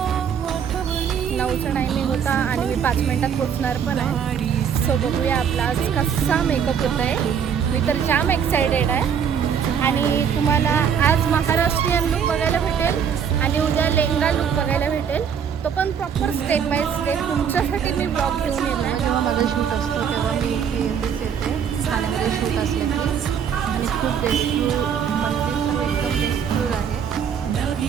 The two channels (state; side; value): quieter; left; 7.6 dB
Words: 9चा टायमिंग होता आणि मी 5 मिनिटात पोचणार पण आहे. सो बघूया आपला आज कसा मेकअप होत आहे. मी तर जाम एक्सायटेड आहे. आणि तुम्हाला आज महाराष्ट्रीयन लुक बघायला भेटेल आणि उद्या लेहंगा लुक बघायला भेटेल. तो पण प्रॉपर स्टेप बाय स्टेप तुमच्यासाठी मी ब्लॉग घेऊन येत आहे. जेव्हा माझा शूट असतो तेव्हा मी इथे येते ठाण्यामध्ये शूट असलं की. आणि खूप बेस्टफुल मंदिर सर्व एकदम बेस्टफुल आहे.